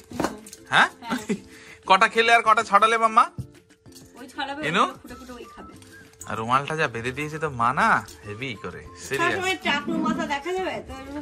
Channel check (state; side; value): identical; both; correlation 1.00